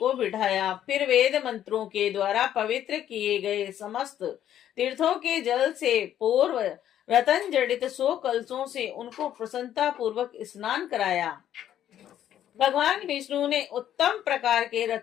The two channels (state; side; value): quieter; right; 11.0 dB